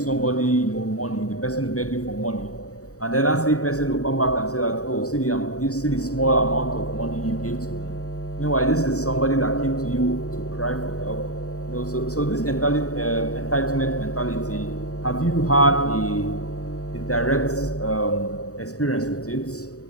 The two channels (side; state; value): right; late; 0.66 ms